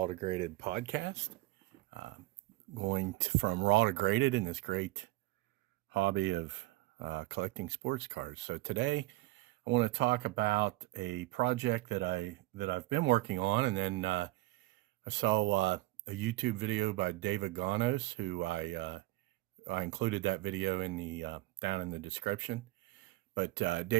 to Graded podcast. From raw to graded in this great hobby of collecting sports cars. So today I want to talk about a project that I've been working on, and then I saw a YouTube video by David Gonos, who I included that video in the down in the description. But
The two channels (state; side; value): quieter; left; 19.6 dB